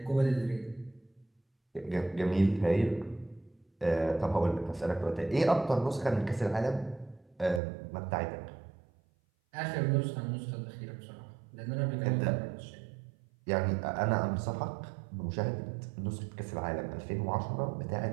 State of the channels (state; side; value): drops out; left; at 7.6 s